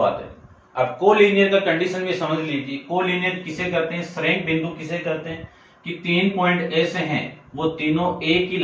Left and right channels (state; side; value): identical; both; correlation 1.00